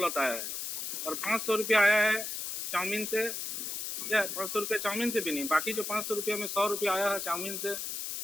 आया है, और 500 रुपया आया है चाउमीन से, या 500 रुपया चाउमीन से भी नहीं, बाकी जो 500 रुपया में 100 रुपया आया है चाउमीन से,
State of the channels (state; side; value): noise; left; hiss, 4 dB below the sound